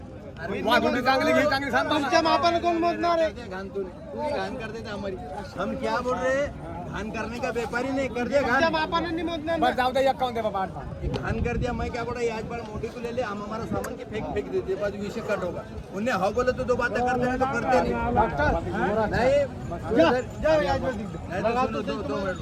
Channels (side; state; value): both; identical; correlation 1.00